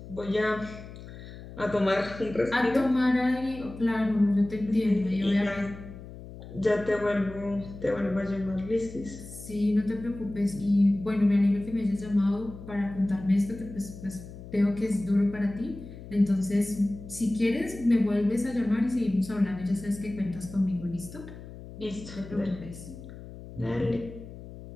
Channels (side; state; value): left; noise; hum, 14 dB below the sound